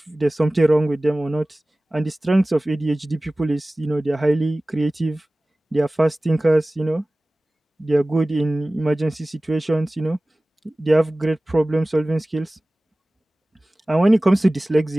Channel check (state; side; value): normal; both; correlation 0.98